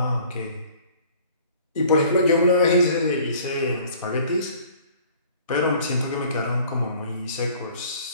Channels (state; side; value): inverted; both; correlation -0.52